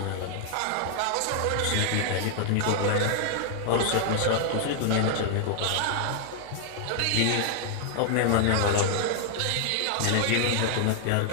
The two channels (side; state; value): both; different; correlation 0.00